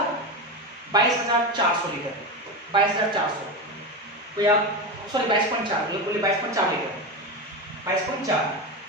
22,400 लीटर, 22,400, तो यार सॉरी 22.4, बोले 22.4 लीटर, 22.4।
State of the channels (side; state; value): both; normal; correlation 0.18